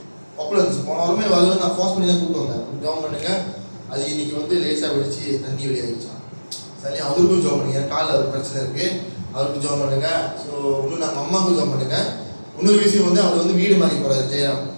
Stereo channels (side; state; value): both; inverted; correlation -1.00